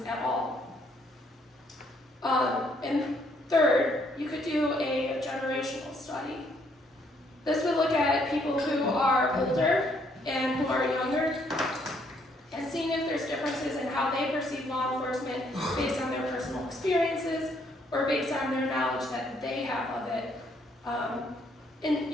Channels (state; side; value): normal; both; correlation 0.69